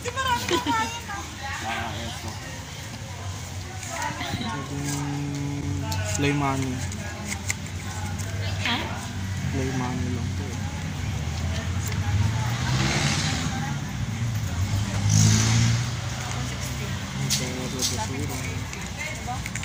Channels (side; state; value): both; identical; correlation 1.00